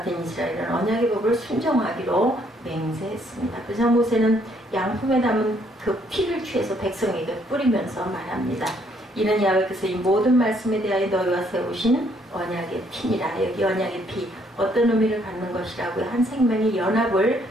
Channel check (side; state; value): both; normal; correlation 0.67